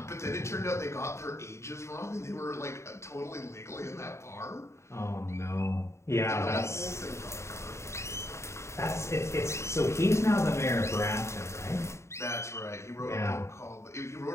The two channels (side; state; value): right; late; 0.14 ms